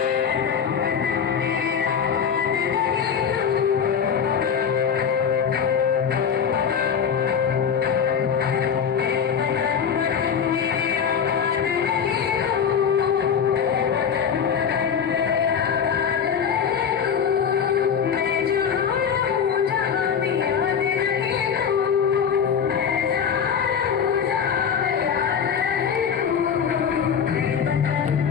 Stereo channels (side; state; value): right; quieter; 7.3 dB